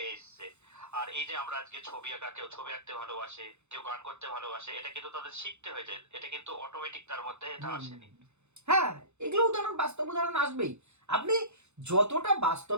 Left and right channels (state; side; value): late; left; 0.82 ms